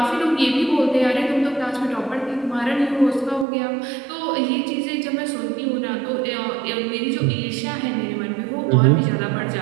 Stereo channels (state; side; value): drops out; left; at 3.5 s